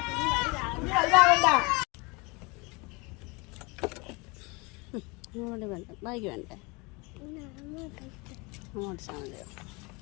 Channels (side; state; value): right; quieter; 27.2 dB